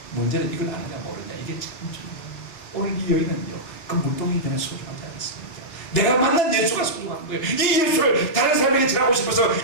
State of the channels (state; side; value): late; right; 3.4 ms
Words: 문제는 이걸 아느냐 모르냐, 이게 참 중요해요. 오늘 이 여인은요, 그 물동이 그냥 소중하지 않았습니다. 내가 만난 예수가 소중한 거예요. 이 예수를 다른 사람에게 전하고 싶어서